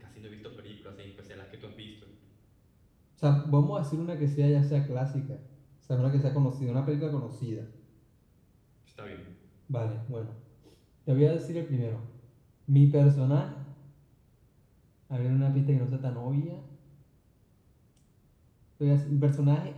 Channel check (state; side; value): identical; both; correlation 1.00